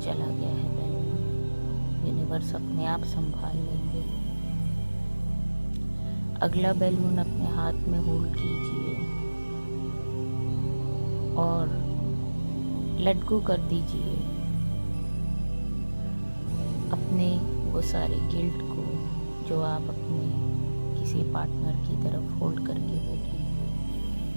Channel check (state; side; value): inverted; both; correlation -1.00